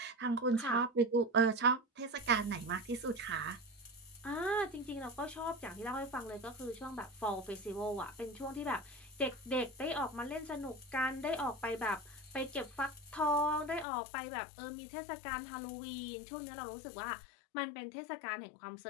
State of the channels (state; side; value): drops out; right; at 13.9 s